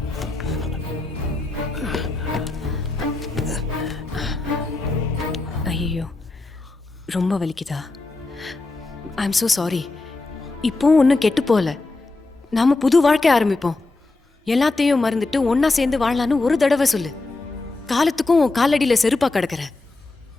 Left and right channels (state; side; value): quieter; right; 3.3 dB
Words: ஐயோ, ரொம்ப வலிக்குதா? I am so sorry. இப்போ ஒன்றும் கெட்டு போகல. நாம புது வாழ்க்கை ஆரம்பிப்போம். எல்லாத்தையும் மறந்துட்டு ஒன்னா சேர்ந்து வாழலான்னு ஒரு தடவை சொல்லு. காலத்துக்கும் உன் காலடியில செருப்பா கிடக்குற.